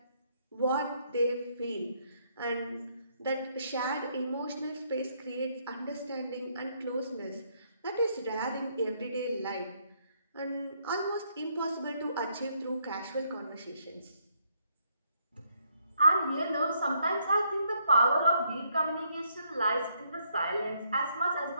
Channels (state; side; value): inverted; both; correlation -0.72